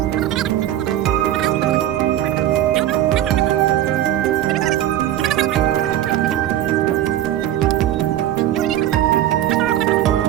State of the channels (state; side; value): quieter; left; 12.4 dB